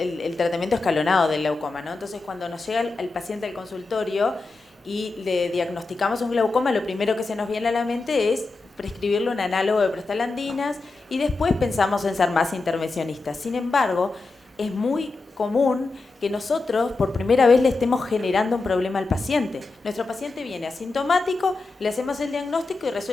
tratamiento escalonado del glaucoma, ¿no? Entonces, cuando nos llega el paciente al consultorio y le diagnosticamos un glaucoma, lo primero que se nos viene a la mente es prescribirle un análogo de prostaglandinas y después pensamos en ser más intervencionistas. Sin embargo, es muy común que nosotros por primera vez le estemos generando un problema al paciente. Nuestro paciente viene asintomático, le hacemos el diagnóstico y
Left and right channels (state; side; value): quieter; right; 3.6 dB